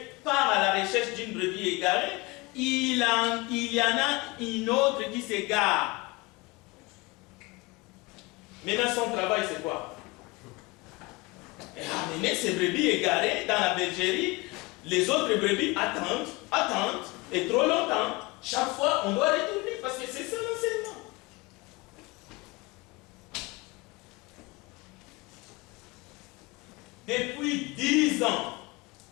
part à la recherche d'une brebis égarée, il y en a une autre qui s'égare. Maintenant, son travail, c'est quoi? Amener ces brebis égarées dans la bergerie. Les autres brebis attendent, et trop longtemps. Chaque fois, on doit retourner parce que c'est ça l'enseignement. Depuis 10 ans,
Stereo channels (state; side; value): quieter; right; 23.9 dB